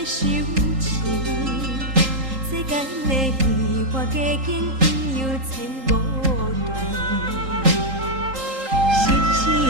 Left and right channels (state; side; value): late; left; 3.8 ms